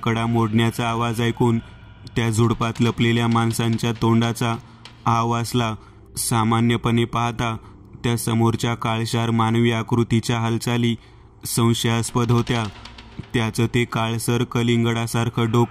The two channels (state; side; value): identical; both; correlation 1.00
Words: मोडण्याचा आवाज ऐकून त्या झुडपात लपलेल्या माणसांच्या तोंडाचा आवासला. सामान्यपणे पाहता त्या समोरच्या काळशार मानवी आकृतीच्या हालचाली संशयास्पद होत्या. त्याचं ते काळसर कलिंगडासारखं